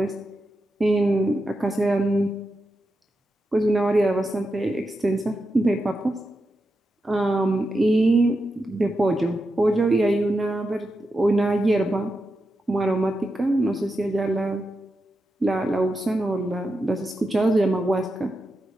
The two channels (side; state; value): both; normal; correlation 0.88